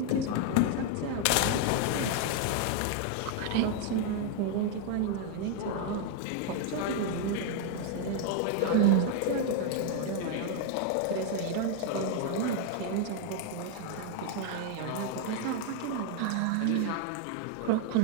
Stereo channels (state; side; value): different; both; correlation 0.00